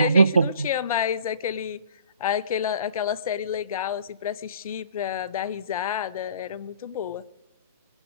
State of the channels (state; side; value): inverted; both; correlation -0.51